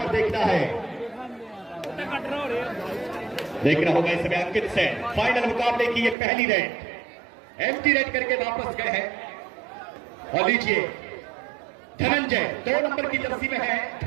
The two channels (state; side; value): drops out; left; at 6.2 s